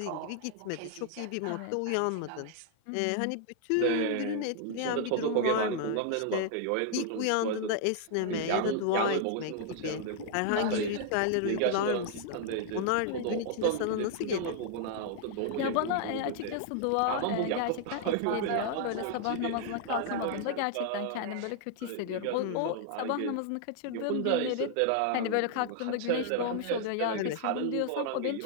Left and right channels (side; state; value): both; different; correlation -0.01